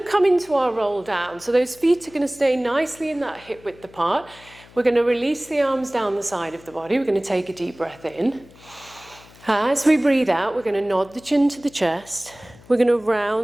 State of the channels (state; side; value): noise; left; hum, 24 dB below the sound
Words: to come into our roll down. So those feet are going to stay nicely in that hip width apart. We're going to release the arms down the side of the body. We're going to take a deep breath in. As we breathe out, we're going to nod the chin to the chest. We're going to